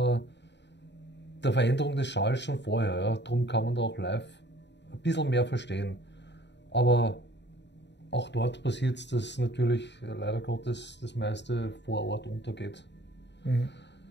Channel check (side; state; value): right; late; 0.51 ms